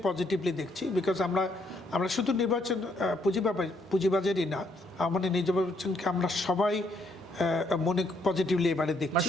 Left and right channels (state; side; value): normal; both; correlation 0.72